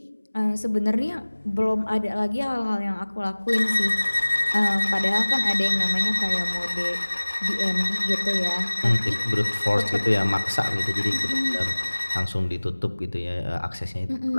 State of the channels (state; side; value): inverted; both; correlation -1.00